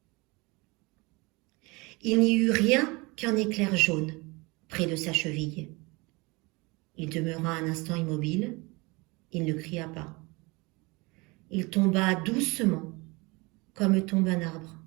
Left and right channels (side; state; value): left; quieter; 25.6 dB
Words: Il n'y eut rien qu'un éclair jaune près de sa cheville. Il demeura un instant immobile. Il ne cria pas. Il tomba doucement, comme tombe un arbre.